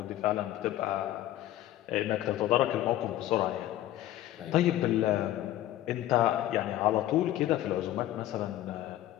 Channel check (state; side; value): quieter; right; 13.9 dB